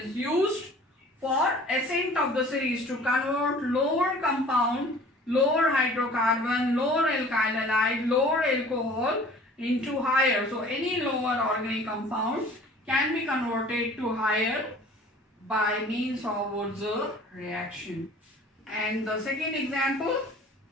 used For ascent of the series to convert lower compound, lower hydrocarbon, lower alkyl halide, lower alcohol into higher. So any lower organic compound can be converted to higher by means of Wurtz reaction. And the second example,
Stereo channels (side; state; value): both; normal; correlation 0.48